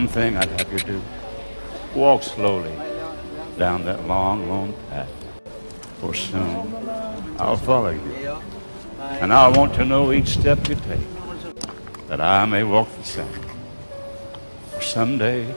thing I'd have you do, walk slowly down that long, lone path, for soon I'll follow you, and I want to know each step you take, that I may walk the same. For someday,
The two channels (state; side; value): inverted; both; correlation -1.00